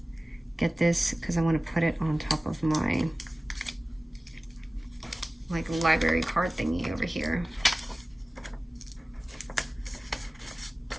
get this because I want to put it on top of my like library card thingy over here.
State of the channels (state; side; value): normal; both; correlation 0.97